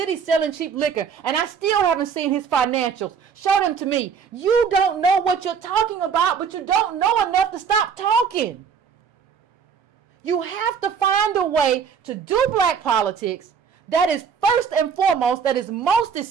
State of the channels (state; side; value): quieter; left; 6.7 dB